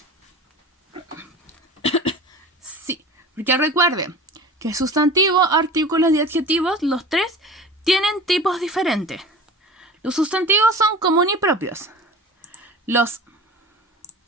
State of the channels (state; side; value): normal; both; correlation 0.37